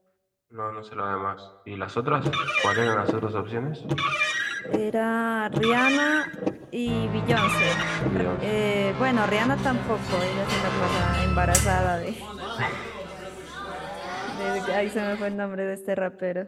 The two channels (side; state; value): both; identical; correlation 1.00